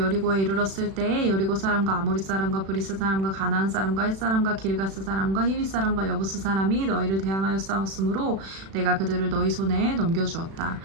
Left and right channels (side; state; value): left; late; 36 ms